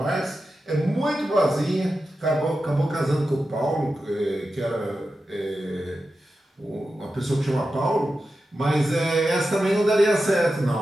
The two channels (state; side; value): normal; both; correlation 0.91